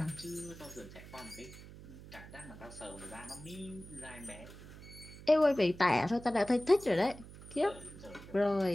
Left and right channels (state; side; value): noise; right; hum, 16 dB below the sound